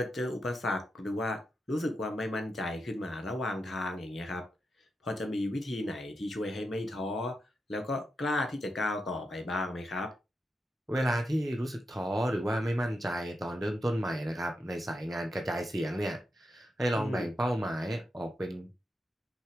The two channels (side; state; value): both; normal; correlation 0.86